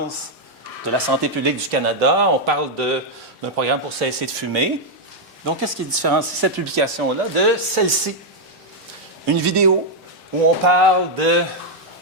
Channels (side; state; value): both; normal; correlation -0.01